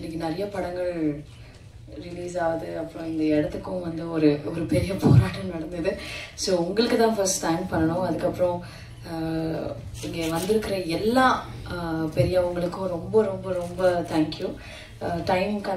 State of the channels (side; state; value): both; identical; correlation 1.00